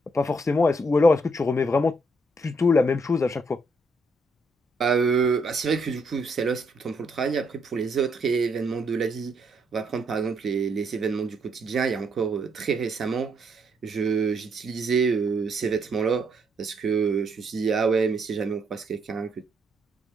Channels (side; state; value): both; normal; correlation 0.73